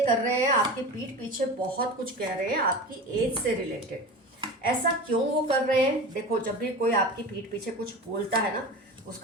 कर रहे हैं, आपकी पीठ पीछे बहुत कुछ कह रहे हैं आपकी एज से रिलेटेड। ऐसा क्यों वो कर रहे हैं? देखो, जब भी कोई आपकी पीठ पीछे कुछ बोलता है ना,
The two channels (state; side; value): normal; both; correlation 0.31